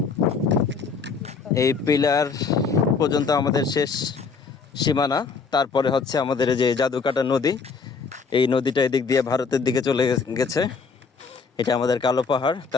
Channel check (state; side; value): quieter; right; 5.1 dB